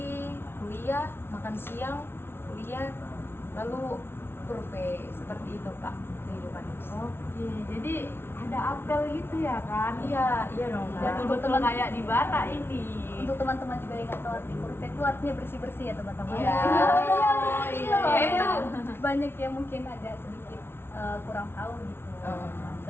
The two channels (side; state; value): right; late; 0.11 ms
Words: kuliah, makan siang, kuliah, lalu kurve, seperti itu kak kehidupannya. Oke, jadi ada apel gitu ya kan? Iya dong kak. Betul-betul kayak di bara ini. Untuk teman-teman juga yang nggak tahu arti kurve itu artinya bersih-bersih ya teman-teman. Iya. Iya, Iya, itu. banyak yang mungkin agak sedikit kurang tahu gitu Oh.